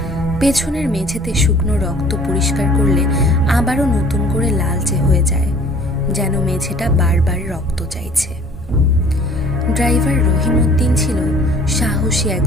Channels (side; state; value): both; normal; correlation 0.52